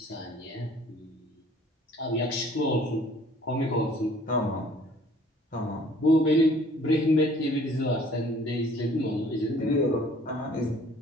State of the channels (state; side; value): normal; both; correlation 0.55